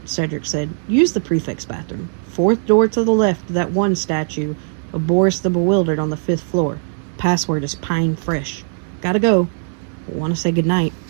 Cedric said. "Use the prefect's bathroom. 4th door to the left of that one statue of Boris the Bewildered on the 5th floor. Password is Pine Fresh. Gotta go. Want to say goodnight."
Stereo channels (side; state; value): left; silent; 63 dB below the other